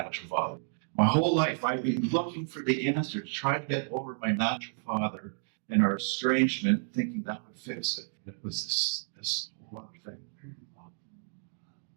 father. My whole life, I've been looking for the answer to try to get over my natural father and our estrangement, thinking that would fix it. And it was this whole other thing.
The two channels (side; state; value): left; silent; digital silence